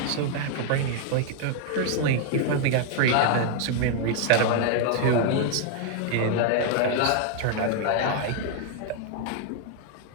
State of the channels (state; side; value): different; both; correlation 0.00